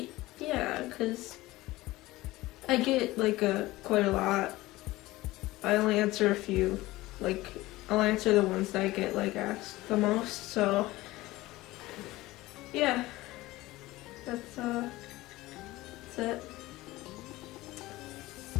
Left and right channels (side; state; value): right; quieter; 18.5 dB